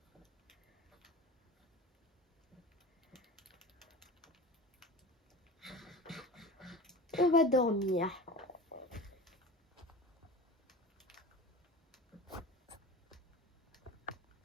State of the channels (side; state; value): both; normal; correlation 0.34